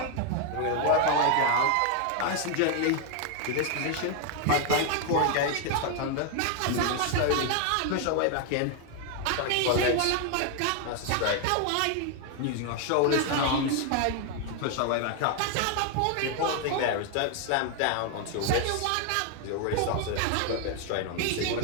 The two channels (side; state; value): both; different; correlation 0.01